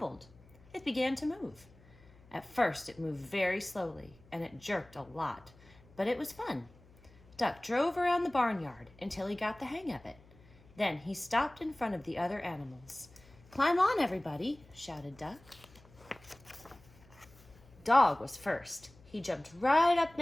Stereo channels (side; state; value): left; noise; hum, 25 dB below the sound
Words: It began to move. At first, it moved very slowly, and it jerked a lot, but it was fun. Duck drove around the barnyard until he got the hang of it. Then he stopped in front of the other animals. "Climb on, everybody," shouted Duck. Dog was first. He jumped right up